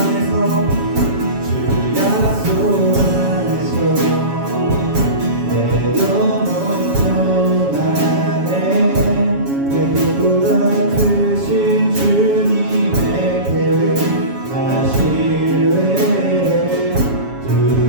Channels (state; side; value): late; left; 7.2 ms